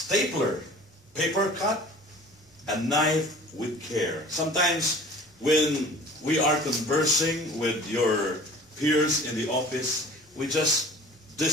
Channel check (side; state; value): both; normal; correlation 0.46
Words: paper cut, a knife with care. Sometimes when we are conversing with your peers in the office, we just